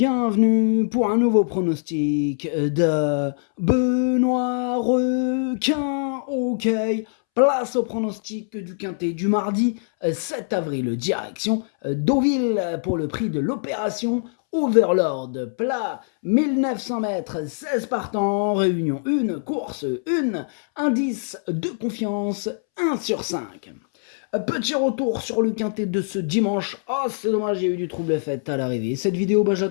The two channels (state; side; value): silent; right; 63 dB below the other